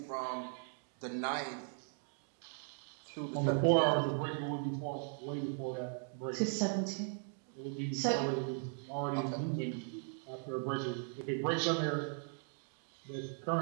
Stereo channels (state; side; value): silent; left; 52 dB below the other